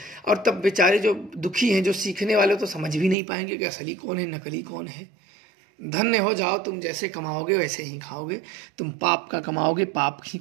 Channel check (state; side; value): drops out; left; at 3.2 s